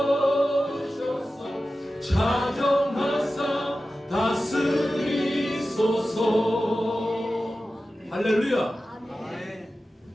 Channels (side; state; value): both; normal; correlation 0.94